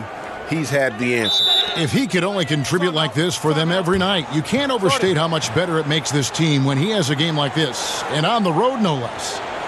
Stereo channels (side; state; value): both; identical; correlation 1.00